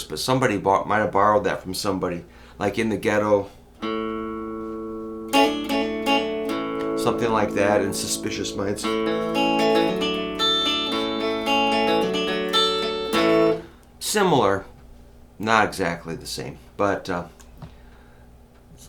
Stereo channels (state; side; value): identical; both; correlation 1.00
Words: but somebody might have borrowed that from somebody. Like In the Ghetto, something like that, and Suspicious Minds. Similar, not exactly the same, but